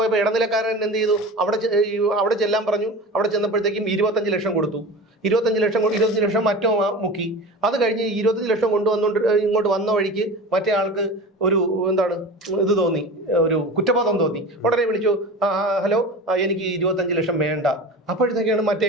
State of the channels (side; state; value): both; normal; correlation 0.32